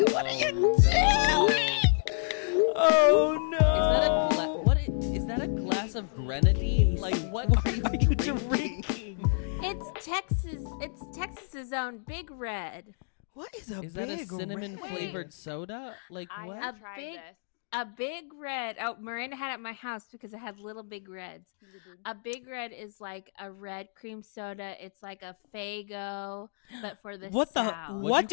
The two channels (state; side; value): silent; right; digital silence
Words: what are you doing? Oh no! Is that a is that a glass of grenadine? Like, what are you drinking? It's Texas. It's Texas's own Big Red. What is a? Is that a big cinnamon red? flavored soda? Like what? A Big Red. Oh, Miranda had it at my house because it had little Big Reds. A Big Red is like a red cream soda. It's like a Faygo, but for the What South. the? What